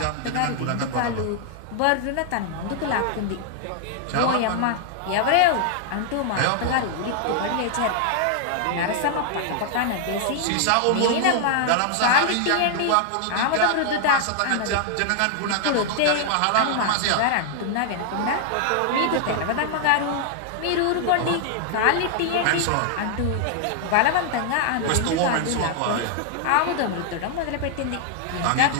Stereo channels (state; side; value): different; both; correlation 0.00